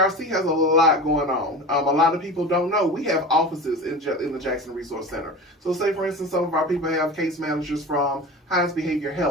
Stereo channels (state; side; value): normal; both; correlation 0.32